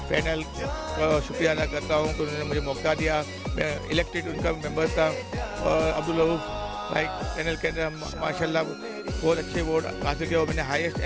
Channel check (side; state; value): both; identical; correlation 1.00